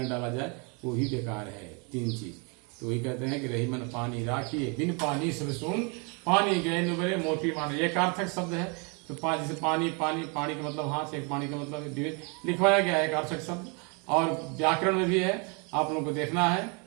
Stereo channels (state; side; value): quieter; left; 33.5 dB